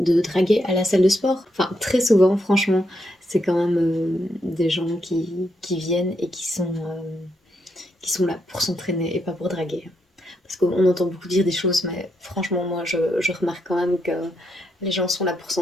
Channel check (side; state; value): both; normal; correlation 0.79